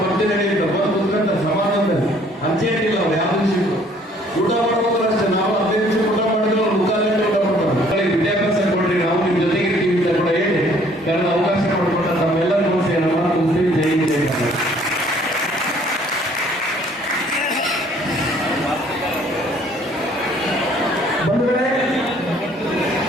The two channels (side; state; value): both; normal; correlation 0.59